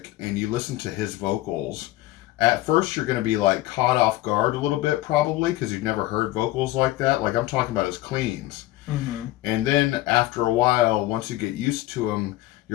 and you listen to his vocals, at first you're going to be like caught off guard a little bit, probably because you've never heard vocals like that. Like I'm talking about his cleans. And then after a while, once you get used to him,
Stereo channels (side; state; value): right; quieter; 16.7 dB